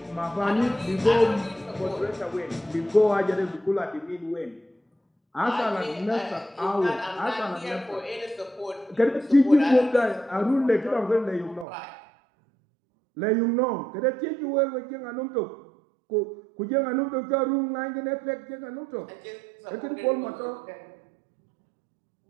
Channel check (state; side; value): drops out; left; at 11.7 s